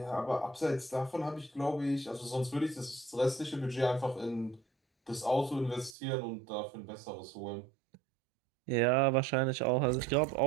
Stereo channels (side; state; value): left; drops out; at 6.0 s